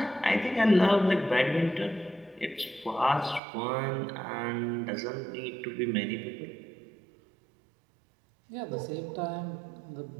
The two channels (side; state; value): left; drops out; at 3.4 s